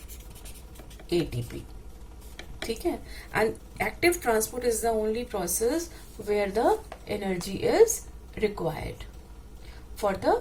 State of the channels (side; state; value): both; identical; correlation 1.00